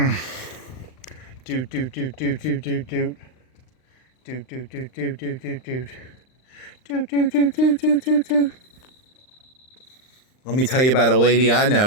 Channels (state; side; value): late; right; 39 ms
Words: Doot. Let me tell you about a lady I